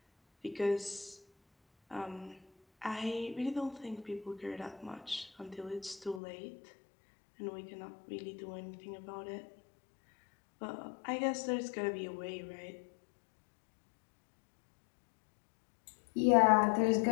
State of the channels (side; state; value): right; drops out; at 6.2 s